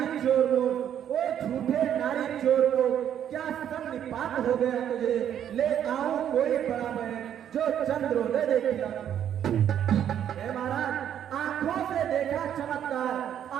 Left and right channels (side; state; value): left; quieter; 9.8 dB